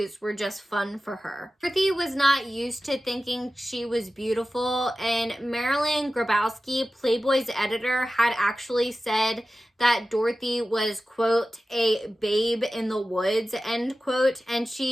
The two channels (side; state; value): both; normal; correlation 0.95